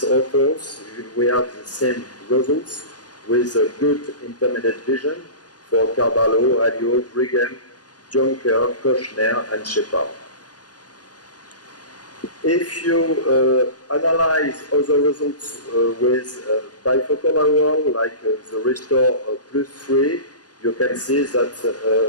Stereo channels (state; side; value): late; right; 0.69 ms